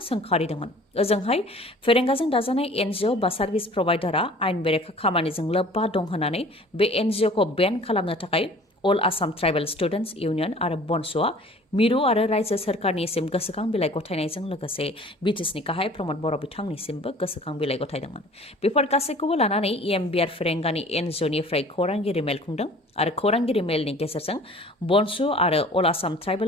ओजोंहाय फेरेंगाजों दाजानाय NGO बा सार्भिस प्रभाइडारआ आयेन बेरेखा खामानिजों लोब्बा दं होननानै बे NGOखौ बेन खालामनो थाखाय अल आसाम ट्राइबेल स्टुडेन्टस इउनियन आरो बनस'आ मिरु आरो रायजो सोरखारनिसिम गोसोखां बिलाइ गथायनायजों लोगोसे बिटिसिनि गाहाय प्रमद बर' बिथांनिसिमबो गोसोखां बिलाइ गथायदोंमोन। बेफोर गासैखौबो लानानै बियार फेरेंगानि NGOनिफ्राय खौरांगिरि मेल खुंदों आरो खौरांगिरि मेलनि गेजेरजों बनस' आरो अल आसाम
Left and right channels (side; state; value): both; normal; correlation 0.48